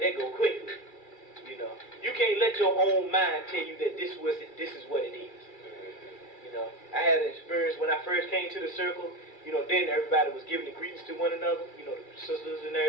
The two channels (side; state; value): right; late; 2.3 ms